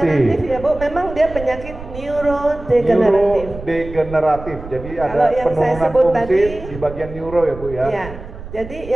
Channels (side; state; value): right; noise; rumble, 13 dB below the sound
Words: Ya Bu, memang dia penyakit neurodegeneratif. Neurodegeneratif, jadi ada Kalau yang saya penurunan sebut fungsi tadi, di bagian neuro ya Bu ya. Ya, jadi